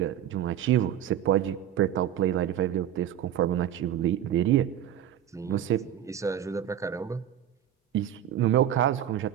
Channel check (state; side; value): quieter; left; 10.8 dB